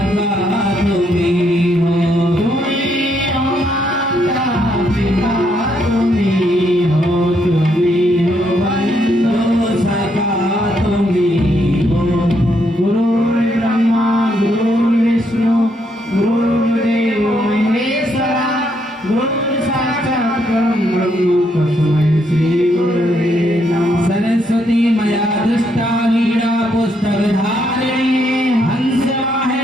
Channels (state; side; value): normal; both; correlation 0.75